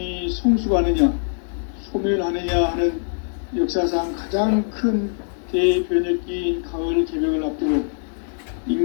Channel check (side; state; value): right; silent; digital silence